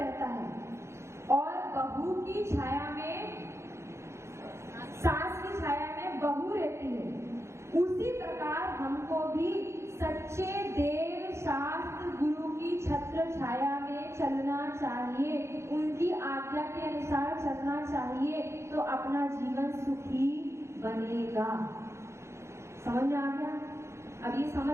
है और बहू की छाया में, सास की छाया में बहू रहती है, उसी प्रकार हमको भी सच्चे देव शास्त्र गुरु की छत्र छाया में चलना चाहिए, उनकी आज्ञा के अनुसार चलना चाहिए, तो अपना जीवन सुखी बनेगा। समझ में आ गया? अब ये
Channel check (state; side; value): late; left; 0.13 ms